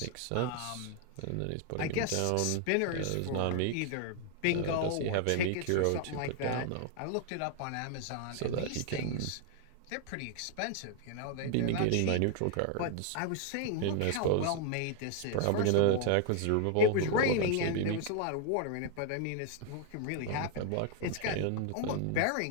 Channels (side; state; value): both; different; correlation 0.00